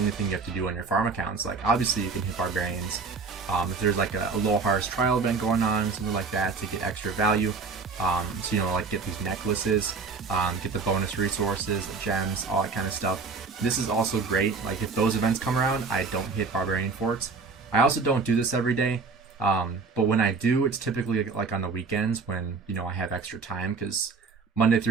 thing you have to do on your farm accounts. Like, obviously you can hit barbarians if there's like a low harvest trial event going on, something like that, to get extra value. So, you know, like get these necklaces, get the bonus resources, the gems, all that kind of stuff. This is also great. Like, if those events come around, I don't hit barbarian forts. I also don't do this every day, but when I do, it's typically like on the weekends when, you know, I have extra time, because Monday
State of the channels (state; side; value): quieter; left; 4.6 dB